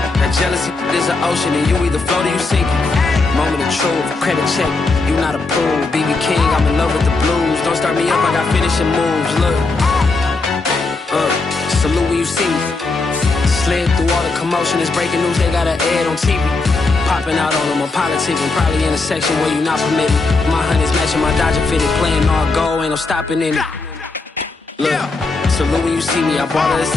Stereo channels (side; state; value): right; quieter; 3.6 dB